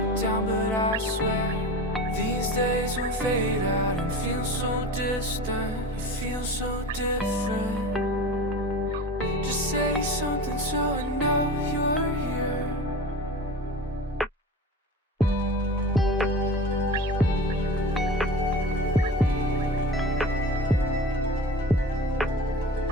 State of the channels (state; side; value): normal; both; correlation 0.33